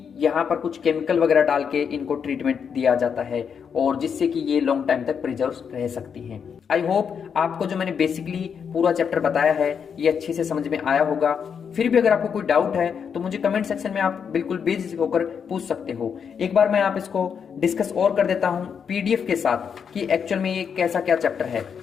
यहाँ पर कुछ केमिकल वगैरह डाल के इनको ट्रीटमेंट दिया जाता है, और जिससे कि ये लॉन्ग टाइम तक प्रिजर्व रह सकती हैं। आई होप आपको जो मैंने बेसिकली पूरा चैप्टर बताया है ये अच्छे से समझ में आया होगा। फिर भी अगर आपको कोई डाउट है तो मुझे कमेंट सेक्शन में आप बिल्कुल बेझिझक होकर पूछ सकते हो। एक बार मैं आप इसको डिस्कस और कर देता हूँ PDF के साथ कि एक्चुअल में ये कैसा क्या चैप्टर है।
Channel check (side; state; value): right; quieter; 7.0 dB